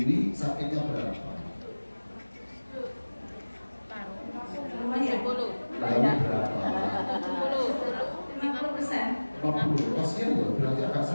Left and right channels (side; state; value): both; inverted; correlation -1.00